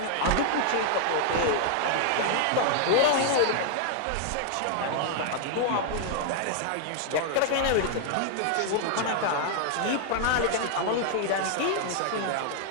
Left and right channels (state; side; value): different; both; correlation 0.00